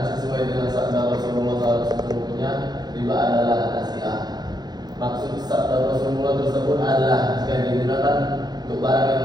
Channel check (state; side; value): late; left; 0.20 ms